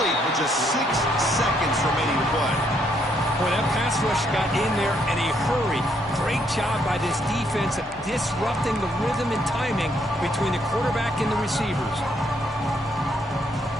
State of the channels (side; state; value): both; normal; correlation 0.72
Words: with just 6 seconds remaining to play. Boy, that pass rush got in there in a hurry. Great job by this defense of disrupting the rhythm and timing between the quarterback and the receivers.